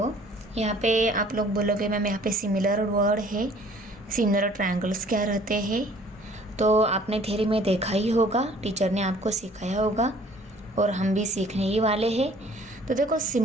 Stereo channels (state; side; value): normal; both; correlation 0.54